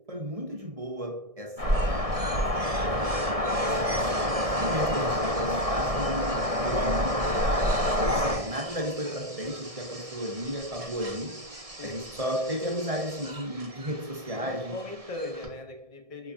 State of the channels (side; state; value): left; late; 1.6 ms